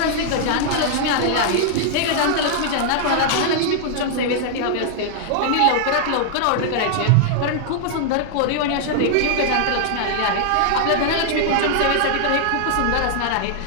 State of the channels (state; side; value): different; both; correlation -0.01